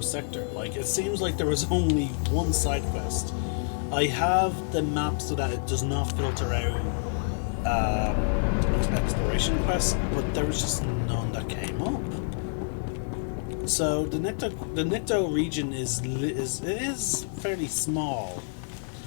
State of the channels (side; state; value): right; silent; 60 dB below the other